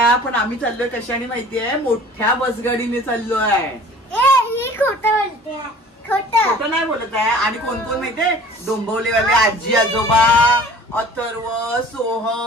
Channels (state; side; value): normal; both; correlation 0.47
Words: पण आम्ही चाललोय कशाने माहितीये, मोठ्या बसगाडीने चाललोय. ही खोटं बोलते, खोटं नाही बोलत आहे. आणि कोण कोण माहितीये, डोंबवलेवाले आजी आजोबा, अथर्व,